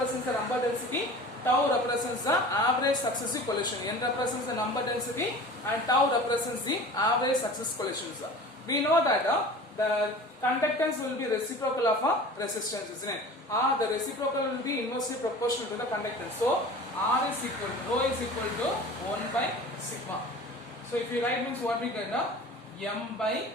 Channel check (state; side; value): normal; both; correlation 0.39